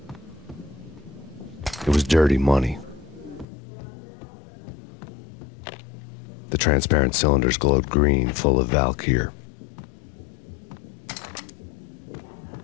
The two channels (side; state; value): right; drops out; at 3.5 s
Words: It was dirty money. The transparent cylinders glowed green, full of Valkyr.